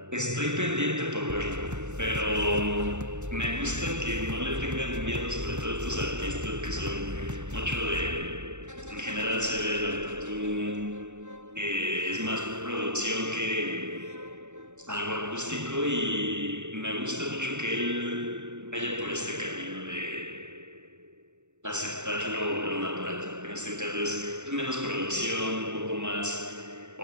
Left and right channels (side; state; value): left; late; 0.84 ms